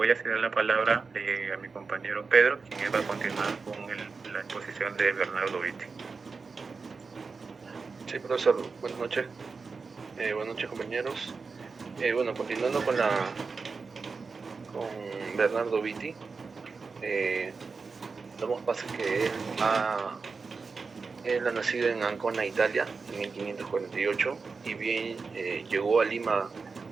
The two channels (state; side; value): quieter; left; 4.6 dB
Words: a ceder la palabra a mi compañero Pedro, quien va a continuar con la exposición de Bernardo Vitti. Sí, profesor, buenas noches. Buenas noches, compañeros. Bueno, continuando con Bernardo Vitti, damos paso que él ha nacido en Ancona, Italia, en 1548, y bien llegó a Lima,